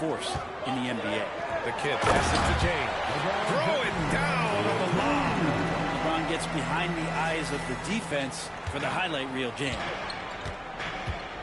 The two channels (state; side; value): identical; both; correlation 1.00